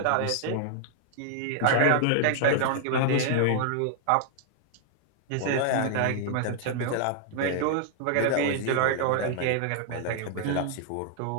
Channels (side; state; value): both; different; correlation -0.01